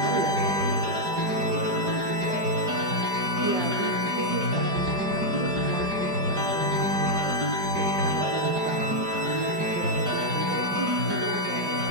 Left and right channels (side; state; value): left; late; 4.9 ms